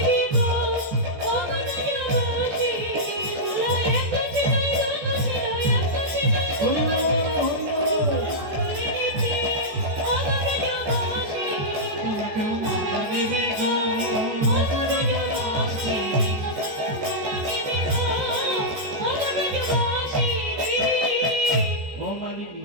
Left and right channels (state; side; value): late; left; 14 ms